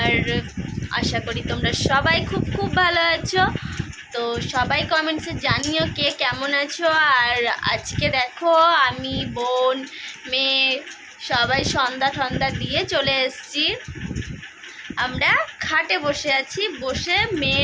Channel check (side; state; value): both; identical; correlation 1.00